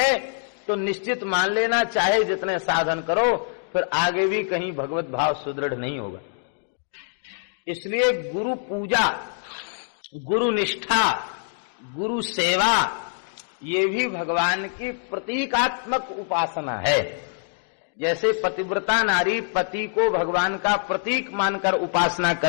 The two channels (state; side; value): silent; right; digital silence